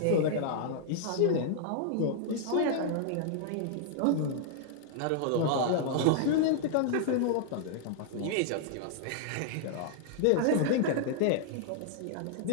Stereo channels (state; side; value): different; both; correlation -0.01